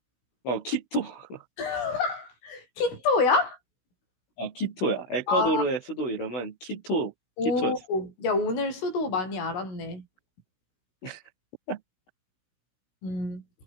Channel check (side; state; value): right; late; 16 ms